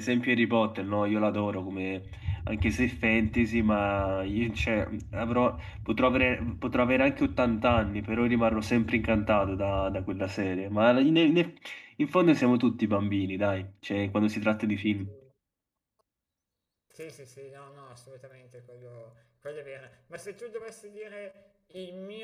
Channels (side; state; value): both; identical; correlation 1.00